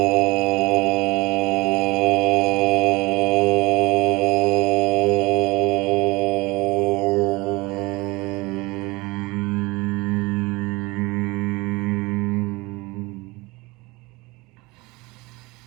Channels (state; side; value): quieter; left; 23.4 dB